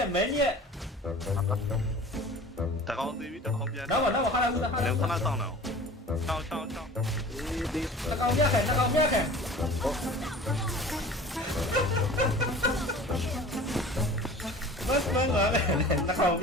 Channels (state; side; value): normal; both; correlation 0.42